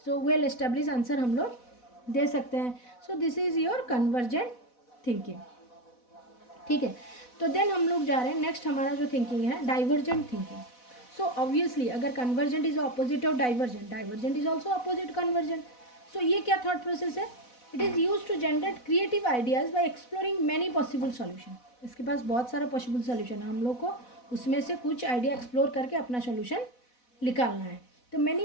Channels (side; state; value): right; late; 4.1 ms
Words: So well establish answer हम लोग दे सकते हैं। सो this is your convergent thinking, ठीक है। तो देन हम लोग जा रहे हैं नेक्स्ट, हमारा जो थिंकिंग है डाइवर्जेंट थिंकिंग। सो ऑब्वियसली अगर convergent is opposite of divergent, divergent is also opposite convergent. So ये क्या थॉट प्रोसेस है? It is use to generate creative ideas by exploring many possible solution. इसके पास बहुत सारा पॉसिबल सॉल्यूशन है, हम लोग को उसमें से कुछ आइडिया एक्सप्लोर करके अपना सॉल्यूशन निकालना है। तो many